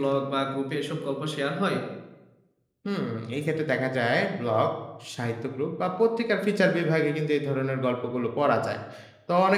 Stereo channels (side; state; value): both; identical; correlation 1.00